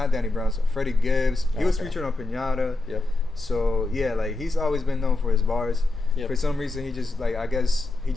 Danny Brown's, Freddie Gibbs. He was featured on Pinata. Yep. So yeah, like he's always been known for his bars. Yep. For some reason, he just I guess he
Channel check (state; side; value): quieter; right; 3.0 dB